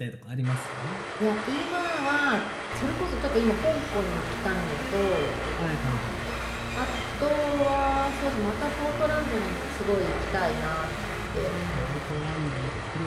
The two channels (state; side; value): identical; both; correlation 1.00